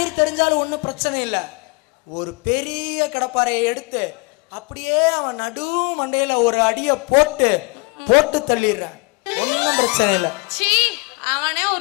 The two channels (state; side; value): quieter; right; 29.5 dB